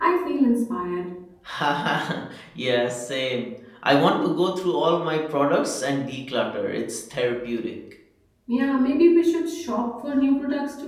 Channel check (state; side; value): identical; both; correlation 1.00